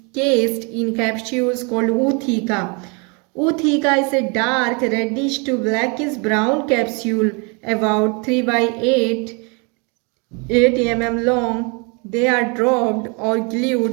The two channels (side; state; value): left; quieter; 32.8 dB